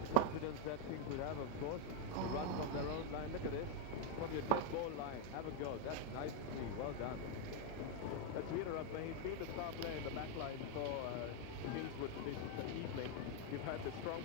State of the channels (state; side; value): different; both; correlation 0.01